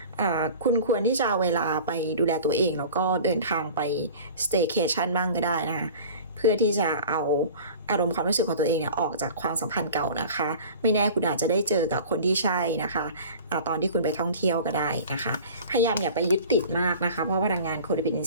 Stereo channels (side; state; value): both; inverted; correlation -0.41